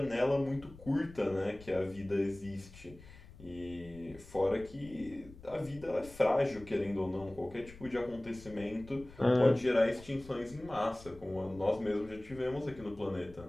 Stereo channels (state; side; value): noise; left; rumble, 19 dB below the sound